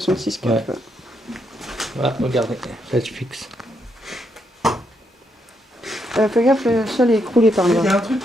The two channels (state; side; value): normal; both; correlation 0.78